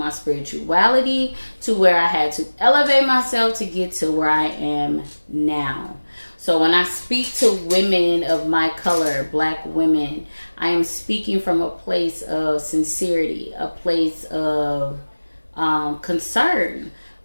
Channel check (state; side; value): inverted; both; correlation -1.00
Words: spirituality, to where I had to elevate myself to get to where I am now. So when I speak to women of my color, black women, I am speaking from a place of sincerity, a place of concern,